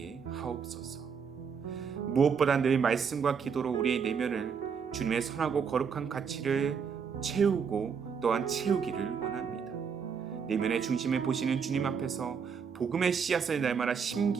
하옵소서. 무엇보다 늘 말씀과 기도로 우리의 내면을 주님의 선하고 거룩한 가치를 채우고 또한 채우기를 원합니다. 내면의 중심을 보시는 주님 앞에서 복음의 씨앗을 날마다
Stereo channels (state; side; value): quieter; left; 6.4 dB